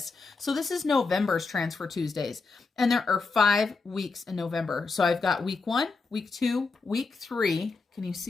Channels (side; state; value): right; quieter; 4.2 dB